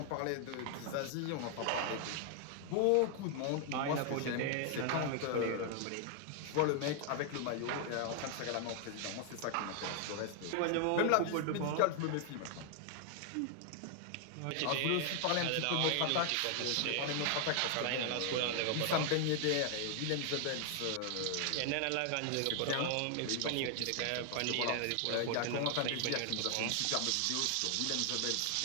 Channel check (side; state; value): both; different; correlation 0.00